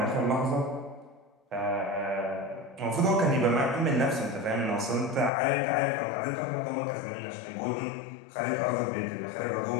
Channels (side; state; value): right; drops out; at 5.3 s